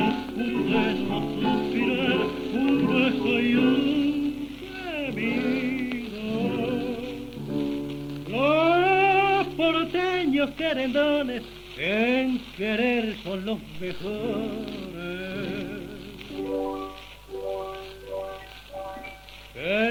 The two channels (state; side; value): identical; both; correlation 1.00